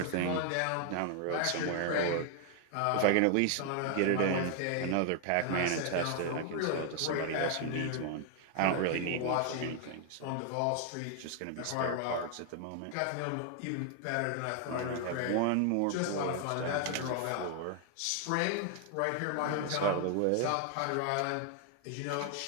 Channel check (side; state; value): both; different; correlation 0.00